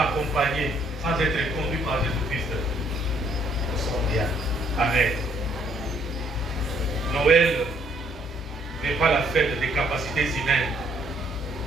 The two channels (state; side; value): normal; both; correlation 0.67